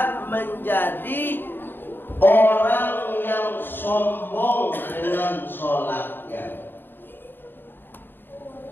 menjadi orang yang sombong dengan sholatnya.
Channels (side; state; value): right; late; 0.098 ms